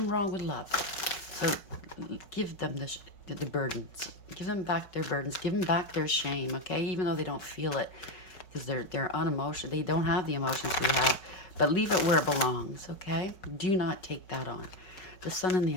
wrong with love. So give them the burdens. Give them back their burdens. Give them back their shame, okay? Even though they don't feel it, because they're unemotional. They don't have the emotions we have. But leave it where it belongs, okay? Do not take that on. The Sun in the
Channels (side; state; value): right; late; 5.3 ms